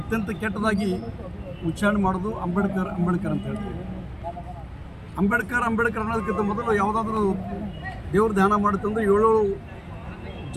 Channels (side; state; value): both; identical; correlation 1.00